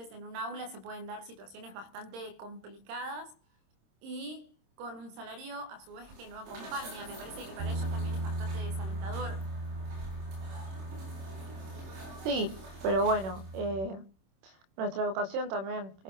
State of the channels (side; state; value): left; late; 26 ms